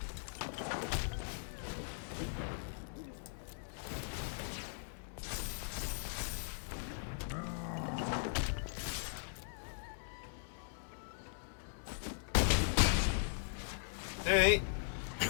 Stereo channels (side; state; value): right; silent; digital silence